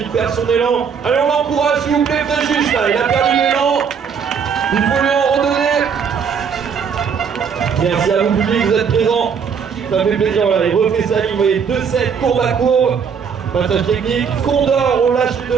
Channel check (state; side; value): quieter; left; 6.7 dB